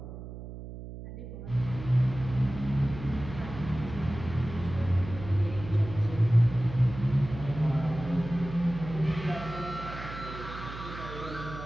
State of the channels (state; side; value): noise; right; hum, 11 dB below the sound